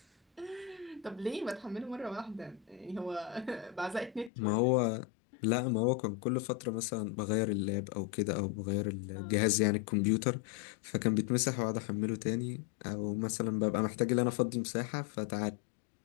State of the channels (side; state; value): right; drops out; at 4.3 s